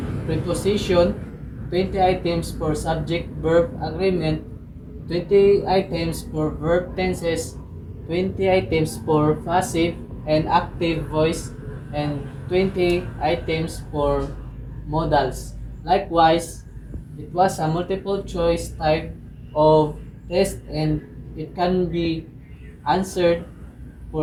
preposition, 20 items for subject-verb agreement, 20 items for verb tenses, 20 items for passive and active voice, and 20 items for modals. Likewise, it was a multiple choice type of test and it can be answered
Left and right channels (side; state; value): both; identical; correlation 1.00